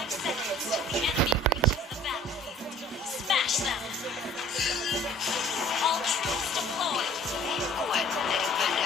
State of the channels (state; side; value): normal; both; correlation 0.51